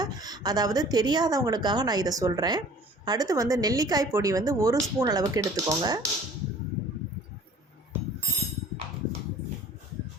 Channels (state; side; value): normal; both; correlation 0.49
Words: அதாவது தெரியாதவங்களுக்காக நான் இதை சொல்கிறேன். அடுத்து வந்து நெல்லிக்காய் பொடி வந்து 1 ஸ்பூன் அளவுக்கு எடுத்துக்கோங்க.